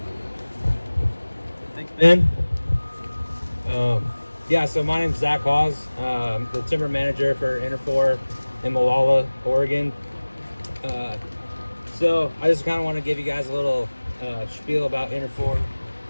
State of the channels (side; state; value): both; inverted; correlation -1.00